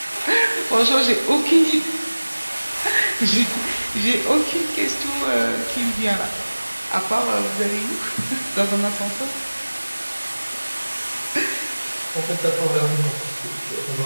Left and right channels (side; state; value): both; inverted; correlation -1.00